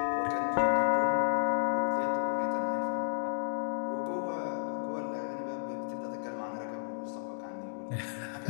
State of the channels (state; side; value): silent; right; digital silence